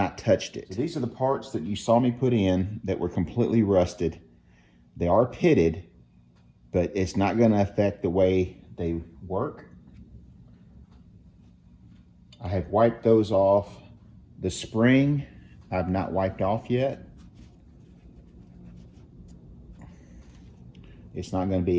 touched it. So these are the parts that you saw me put in that were completely rusted. They are pitted, but it's not going to affect the way they work. I have wiped those off. The spring, I've not wiped off yet. It's not going to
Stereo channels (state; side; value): identical; both; correlation 1.00